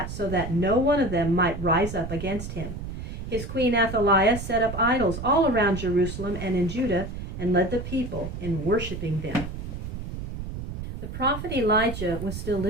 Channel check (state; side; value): noise; right; rumble, 7 dB below the sound